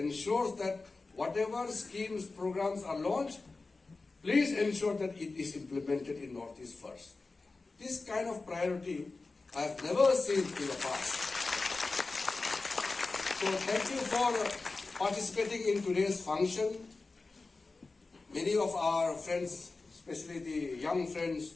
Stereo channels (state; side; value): quieter; right; 3.7 dB